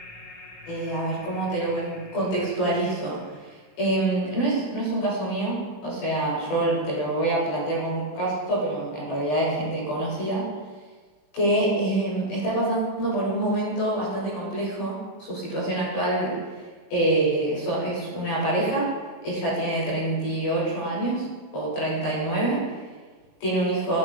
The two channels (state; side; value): late; right; 20 ms